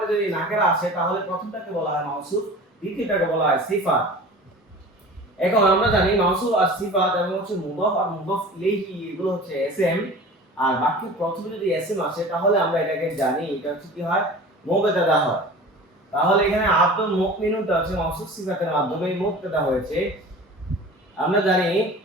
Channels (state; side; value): normal; both; correlation 0.39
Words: যদি নাকেরা আসে তাহলে প্রথমটাকে বলা হয় মাউসুফ, দ্বিতীয়টাকে বলা হয় সিফাত। এখন আমরা জানি মাউসুফ আর সিফাত এবং হচ্ছে মুদাফ আর মুদাফ ইলাইহি এগুলো হচ্ছে এসএম। আর বাক্যের প্রথমে যদি এসএম আসে তাহলে আমরা এটাকে জানি এটা হচ্ছে কি হয়, মুবতাদা হয়। তাহলে এখানে আব্দুল মুমিনুনটা হচ্ছে মাউসুফ সিফাতের মাধ্যমে মুবতাদা হয়েছে। আমরা জানি